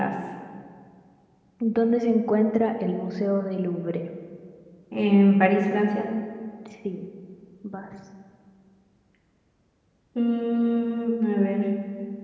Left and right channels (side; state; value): both; identical; correlation 1.00